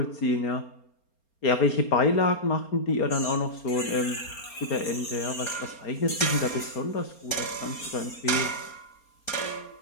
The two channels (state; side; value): late; right; 4.3 ms